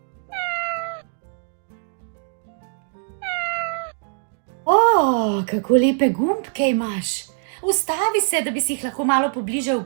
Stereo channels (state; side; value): silent; left; digital silence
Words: O, kako lepe gumbke imaš! Ustavi se, da bi si jih lahko malo pobliže